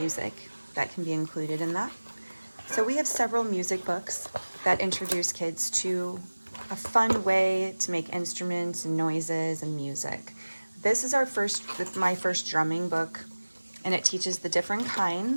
that can be included in that. So we have several music books that introduce kids to a fun way to make instruments and noises and music. This is my first drumming book, and it teaches the different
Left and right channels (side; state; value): both; inverted; correlation -1.00